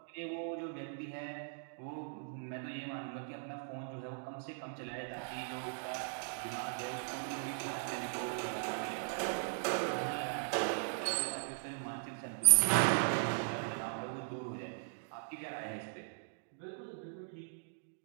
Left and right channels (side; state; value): left; silent; digital silence